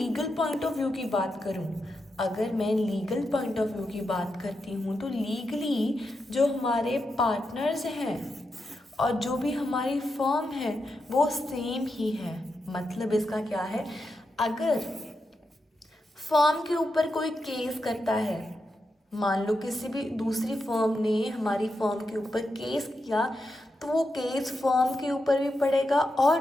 पॉइंट ऑफ व्यू की बात करूं, अगर मैं लीगल पॉइंट ऑफ व्यू की बात करती हूँ तो लीगली जो हमारे पार्टनर्स हैं और जो भी हमारी फर्म है वो सेम ही है. मतलब इसका क्या है, अगर फर्म के ऊपर कोई केस करता है, मान लो किसी भी दूसरी फर्म ने हमारी फर्म के ऊपर केस किया, तो वो केस फर्म के ऊपर भी पड़ेगा और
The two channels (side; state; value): both; normal; correlation 0.86